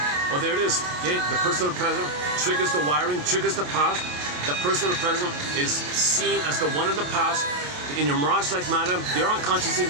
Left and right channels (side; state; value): left; late; 28 ms